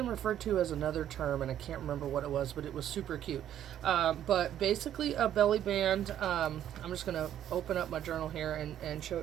referred to as another term, and I can't remember what it was, but it was super cute. But basically, a belly band. I'm just going to open up my journal here and show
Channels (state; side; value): quieter; left; 10.9 dB